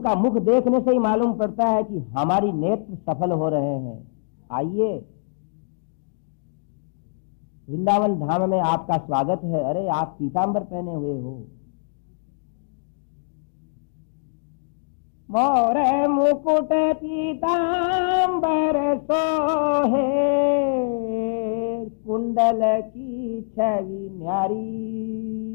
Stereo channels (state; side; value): silent; right; digital silence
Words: मुख देखने से ही मालूम पड़ता है कि हमारी नेत्र सफल हो रहे हैं। आइए, वृंदावन धाम में आपका स्वागत है। अरे आप पीतांबर पहने हुए हो। मोर मुकुट पीतांबर सोहे, कुंडल की छवि